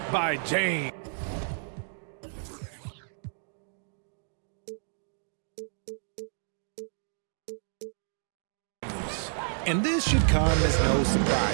by James. And this should come as no surprise.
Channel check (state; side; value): silent; left; digital silence